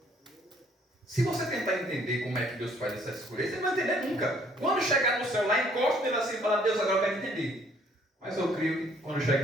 Se você tentar entender como é que Deus faz essa escolha, você não vai entender nunca. Quando chegar no céu lá, encosta nele assim e fala, Deus, agora eu quero entender. Mas eu creio que quando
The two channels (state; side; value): normal; both; correlation 0.62